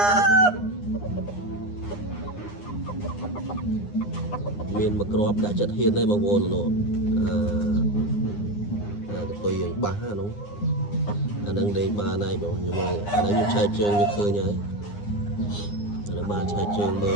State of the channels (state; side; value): late; right; 9.8 ms